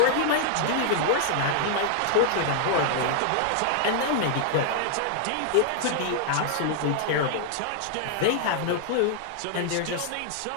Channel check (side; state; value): both; different; correlation -0.01